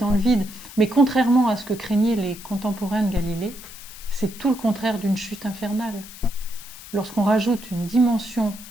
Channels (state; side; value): noise; left; hiss, 16 dB below the sound